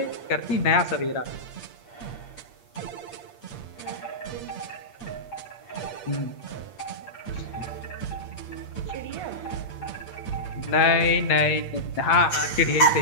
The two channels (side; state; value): right; late; 8.7 ms